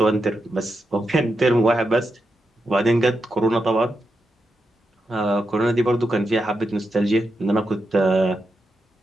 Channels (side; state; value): both; normal; correlation 0.86